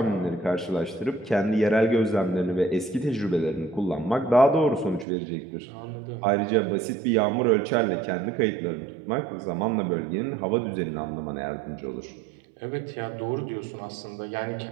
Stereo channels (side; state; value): left; drops out; at 5.1 s